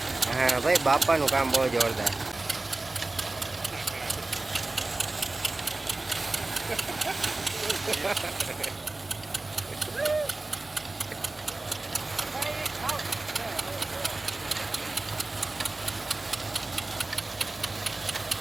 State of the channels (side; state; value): left; quieter; 3.1 dB